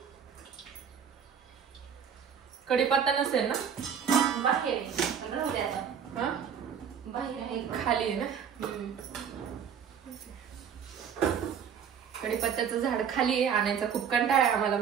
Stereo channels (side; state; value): left; quieter; 7.7 dB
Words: कढीपत्ता नसेल ना बाहेर आहे. राहू दे आता. हा बाहेर आहे खाली आहे ना. कढीपत्त्याचं झाड खाली आहे. आणायचा खूप कंटाळा आहे आम्हाला.